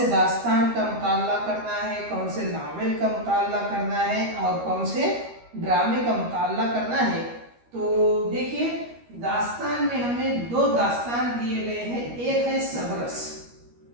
दास्तान का मुताला करना है, कौन से नावल का मुताला करना है और कौन से ड्रामे का मुताला करना है। तो देखिए, दास्तान में हमें 2 दास्तान दिए गए हैं, एक है सबरस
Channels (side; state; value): left; late; 13 ms